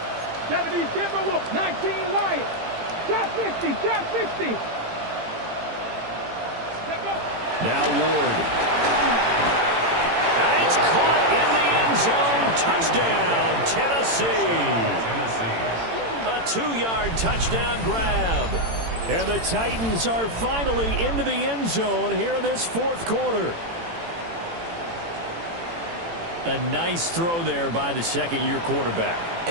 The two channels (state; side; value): late; left; 18 ms